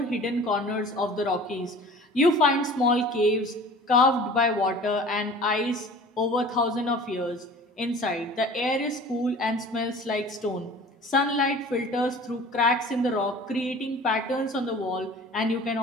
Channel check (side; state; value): both; normal; correlation 0.43